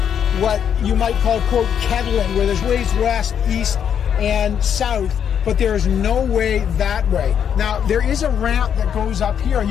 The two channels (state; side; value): quieter; right; 8.4 dB